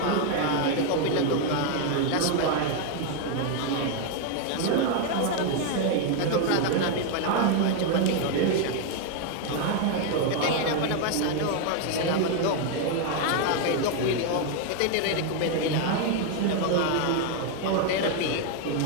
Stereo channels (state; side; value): different; both; correlation 0.01